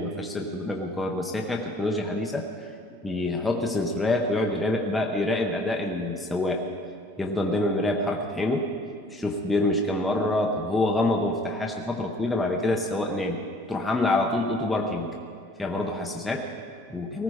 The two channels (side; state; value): both; normal; correlation 0.54